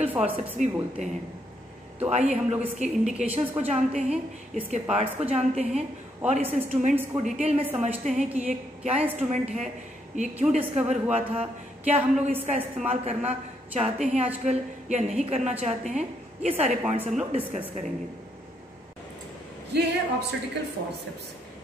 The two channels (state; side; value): normal; both; correlation 0.75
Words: फॉरसेप्स भी बोलते हैं। तो आइए हम लोग इसके इंडिकेशंस को जानते हैं, इसके पार्ट्स को जानते हैं और इस इंस्ट्रूमेंट्स को डिटेल में समझते हैं कि ये क्या इंस्ट्रूमेंट है, ये क्यों डिस्कवर हुआ था, क्या हम लोग इसका इस्तेमाल करना चाहते हैं आजकल या नहीं करना चाहते हैं। ये सारे पॉइंट्स हम लोग डिस्कस करेंगे। ये है ऑब्स्टेटिकल फॉरसेप्स,